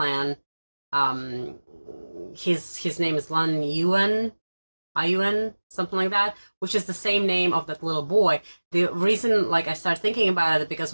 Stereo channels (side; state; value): both; inverted; correlation -1.00